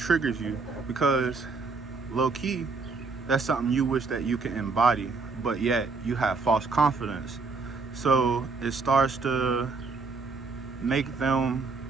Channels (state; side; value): quieter; left; 4.3 dB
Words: you because low-key, that's something you wish that you can embody, but yet you have false confidence. So it starts to make them